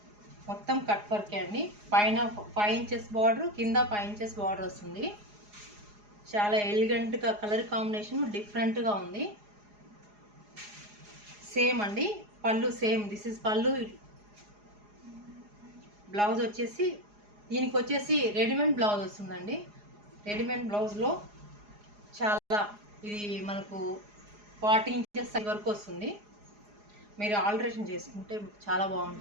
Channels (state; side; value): late; left; 4.8 ms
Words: మొత్తం కట్ వర్కే అండి. పైన 5 ఇంచెస్ బార్డర్, కింద 5 ఇంచెస్ బార్డర్ వస్తుంది. చాలా ఎలిగెంట్గా కలర్ కాంబినేషన్ డిఫరెంట్గా ఉంది. సేమ్ అండి. పళ్ళు సేమ్. దిస్ ఇస్ పళ్ళు. బ్లౌజ్ వచ్చేసి దీనికి వచ్చేసి రెడీమేడ్ బ్లౌజ్ వస్తుందండి. రెడీమేడ్ బ్లౌజ్లో చాలా ఇది మనకు 40 ఇంచెస్ వరకు వస్తుంది. మీరు ఆల్టరేషన్ చేసుకుంటే చాలా